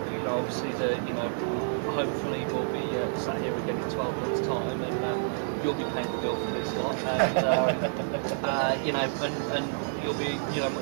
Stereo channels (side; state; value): left; silent; 59 dB below the other